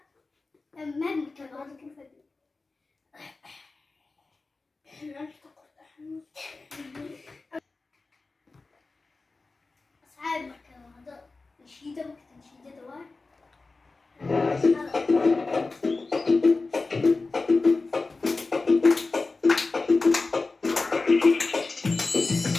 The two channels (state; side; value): quieter; right; 3.7 dB